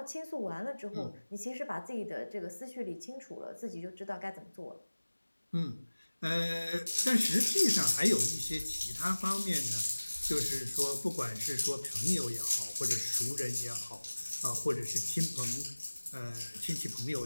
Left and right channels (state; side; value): inverted; both; correlation -1.00